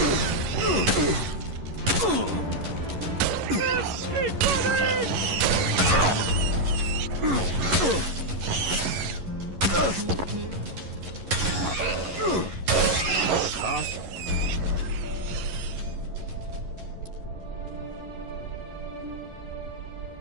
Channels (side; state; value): left; late; 11 ms